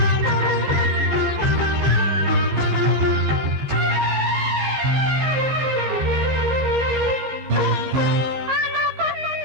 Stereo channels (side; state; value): left; late; 15 ms